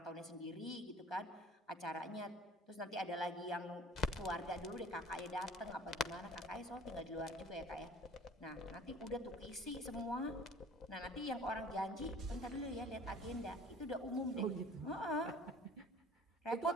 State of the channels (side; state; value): both; normal; correlation 0.48